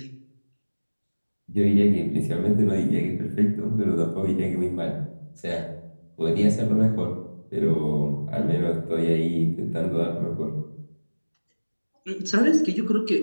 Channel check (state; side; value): inverted; both; correlation -1.00